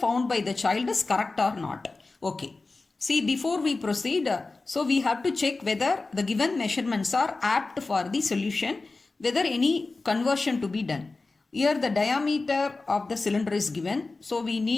by the child is correct or not. Okay. See, before we proceed, so we have to check whether the given measurements are apt for the solution, whether any conversion to be done. Here the diameter of the cylinder is given. So we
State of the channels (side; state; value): right; quieter; 3.6 dB